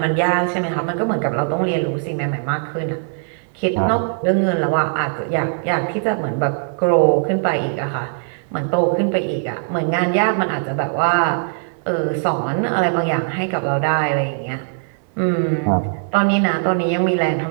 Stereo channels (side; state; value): left; silent; digital silence